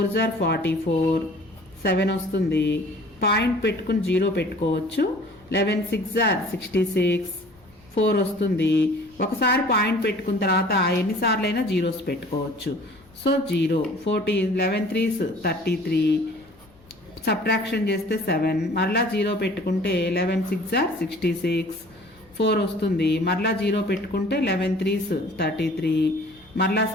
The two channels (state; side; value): noise; left; rumble, 29 dB below the sound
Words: 44, 7 వస్తుంది. పాయింట్ పెట్టుకుని 0 పెట్టుకోవచ్చు. 11 6s 66, 4 వస్తుంది. ఒకసారి పాయింట్ పెట్టుకున్న తర్వాత ఎన్నిసార్లు అయినా జీరోస్ పెట్టుకోవచ్చు. సో 0 14, 11 3s 33, సబ్ట్రాక్షన్ చేస్తే 7, మరలా 0 పెట్టుకుంటే 11 6s 66, 4 వస్తుంది. మరలా 0 పెట్టుకుంటే 11 3s 33, మరలా